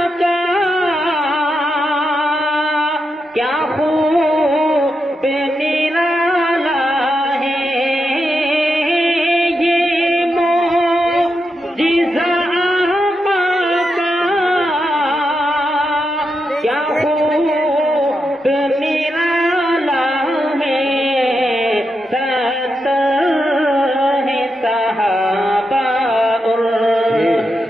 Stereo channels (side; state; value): both; normal; correlation 0.86